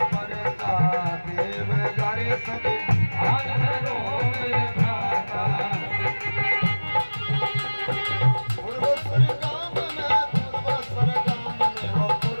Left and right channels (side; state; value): both; inverted; correlation -1.00